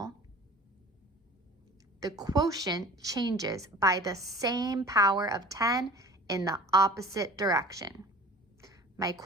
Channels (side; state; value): both; normal; correlation 0.42